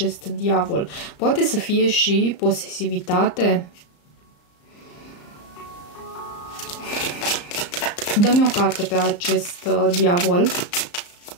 diavol. Poate să fie și posesivitate? Dă-mi o carte pe acest diavol.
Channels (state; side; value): late; right; 34 ms